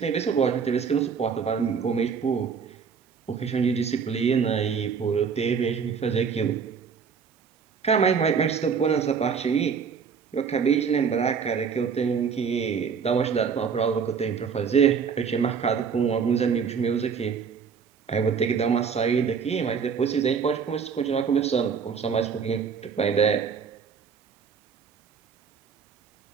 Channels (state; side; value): quieter; left; 6.3 dB